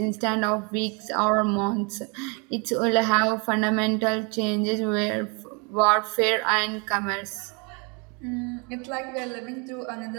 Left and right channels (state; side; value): quieter; left; 32.8 dB